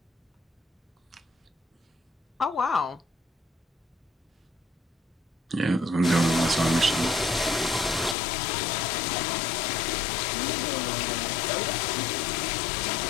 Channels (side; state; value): right; drops out; at 8.2 s